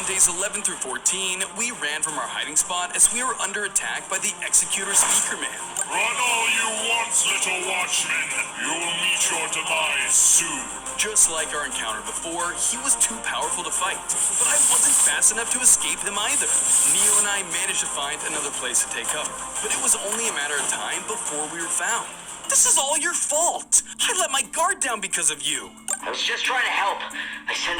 days 11 through 14, we ran from our hiding spot as we were under attack by the Executor Speakerman. Run all you want, little Watchman. You'll meet your demise soon. Just like our encounter before, he was too powerful to fight, but I wasn't fast enough to escape him either. Neo and I managed to find another place to take cover, but it was only a matter of time before we were found. This is all your fault! I let my guard down because of you! I was just trying to help. I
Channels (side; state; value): both; identical; correlation 1.00